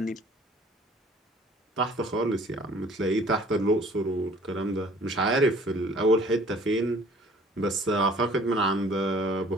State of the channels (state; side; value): normal; both; correlation 0.53